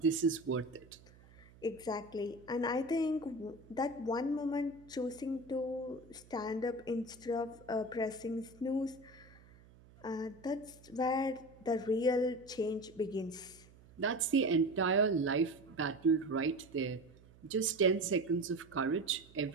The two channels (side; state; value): right; noise; hum, 24 dB below the sound